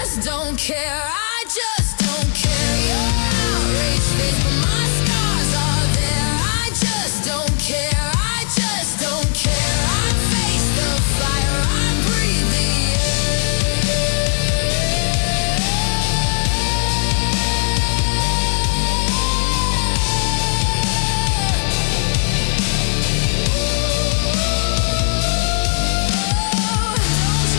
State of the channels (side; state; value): right; silent; 61 dB below the other